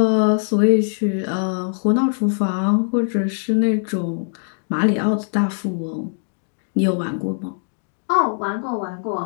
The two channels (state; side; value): silent; right; digital silence